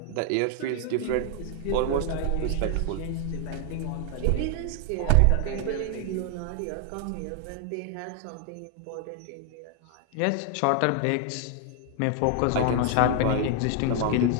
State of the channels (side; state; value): both; different; correlation 0.00